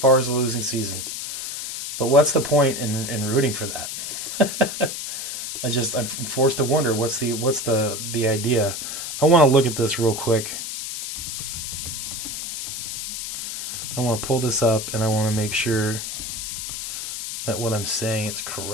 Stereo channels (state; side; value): noise; left; hiss, 5 dB below the sound